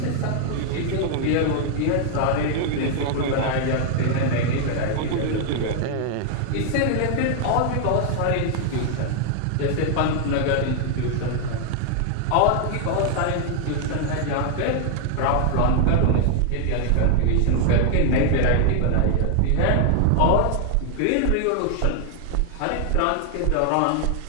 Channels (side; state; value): both; different; correlation 0.00